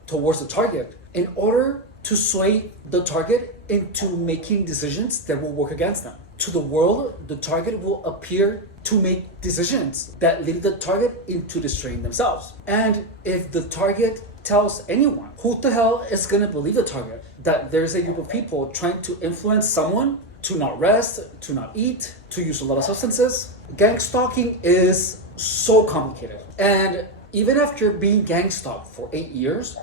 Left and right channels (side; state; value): both; normal; correlation 0.08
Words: towards the target in order to sway the target into making decisions that will work against them. To the world, the target will appear to make decisions that lead the target into destroying themselves. And if the target tells anyone, who the hell is gonna believe the target? That there's a group of people trying to influence someone to not rest, to not eat, to use a lot of substances. Gang stalking is so complicated. And even after being gang stalked for 8 years,